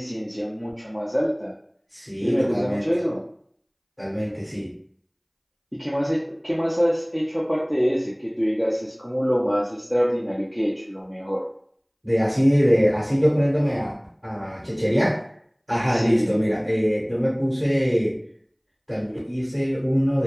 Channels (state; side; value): identical; both; correlation 1.00